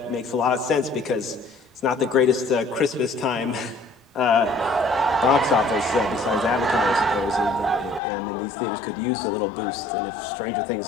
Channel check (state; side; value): drops out; right; at 8.0 s